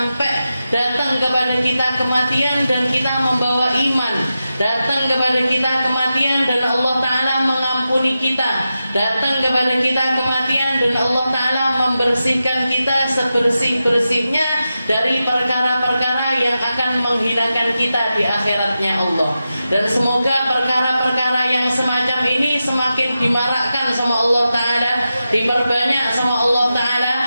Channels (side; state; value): both; inverted; correlation -0.91